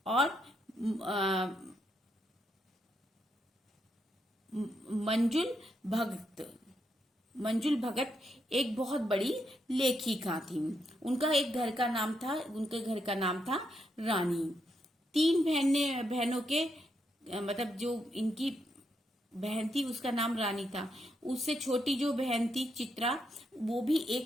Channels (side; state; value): both; normal; correlation 0.80